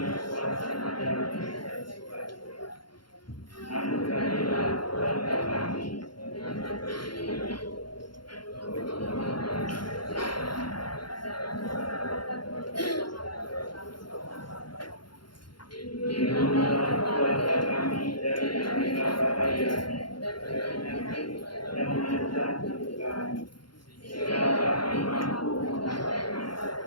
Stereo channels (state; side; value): late; right; 0.72 ms